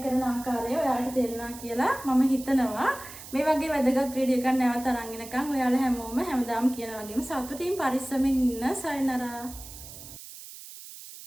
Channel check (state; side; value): noise; right; hiss, 15 dB below the sound